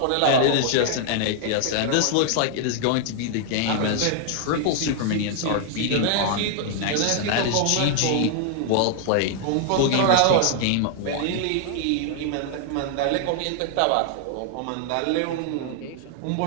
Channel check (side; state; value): both; different; correlation 0.00